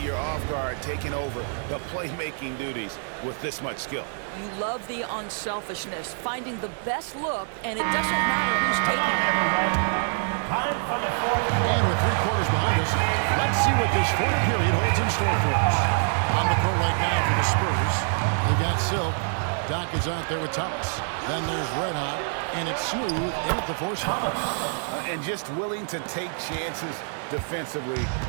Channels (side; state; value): left; silent; 61 dB below the other